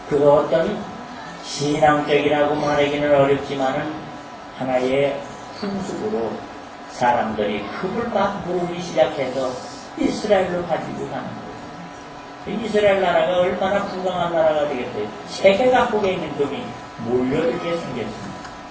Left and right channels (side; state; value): both; identical; correlation 1.00